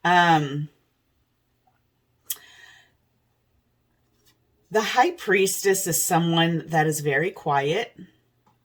The High Priestess is someone that is very quiet.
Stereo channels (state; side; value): identical; both; correlation 1.00